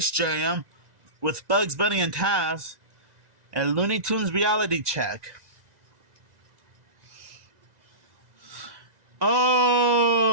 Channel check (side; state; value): left; late; 2.0 ms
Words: Jam, with Bugs Bunny and Taz. And Looney Tunes Reality Check.